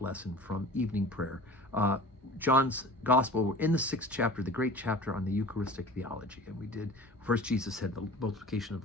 lesson from evening prayer. John's Gospel, we're in the 6th chapter, the great chapter on the Eucharistic theology. And we did, first Jesus said the multiplication of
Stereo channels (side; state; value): both; normal; correlation 0.41